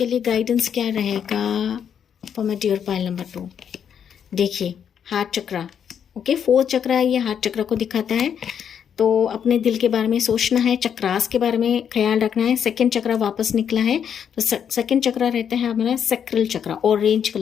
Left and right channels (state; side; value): quieter; right; 8.2 dB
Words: लिए गाइडेंस क्या रहेगा for my dear pile number 2। देखिए, हार्ट चक्रा, ओके, 4th चक्रा है, ये हार्ट चक्रा को दिखाता है। तो अपने दिल के बारे में सोचना है, चक्रास के बारे में ख्याल रखना है। 2nd चक्रा वापस निकला है, तो 2nd चक्रा रहता है हमारा सैक्रल चक्रा, ऑरेंज